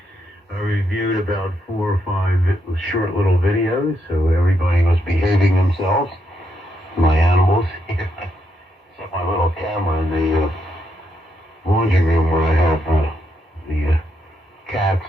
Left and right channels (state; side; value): normal; both; correlation 0.79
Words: I reviewed about 4 or 5 short little videos, so everybody was behaving themselves. My animals. Except my little camera in the laundry room where I have the cats.